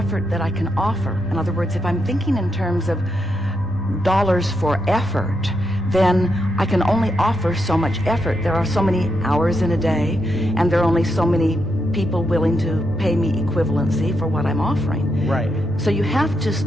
that I can offer. In other words, if I'm thinking in terms of dollars for effort, then I can only offer so much effort. There are so many hours in a day, and there are only so many people willing to pay me equivalency for what I'm offering. Right. So you have to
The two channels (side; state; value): both; normal; correlation 0.82